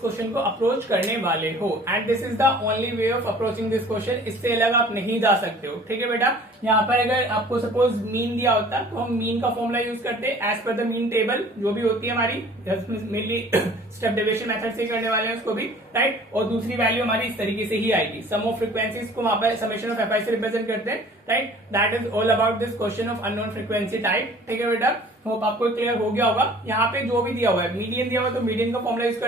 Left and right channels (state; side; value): normal; both; correlation 0.49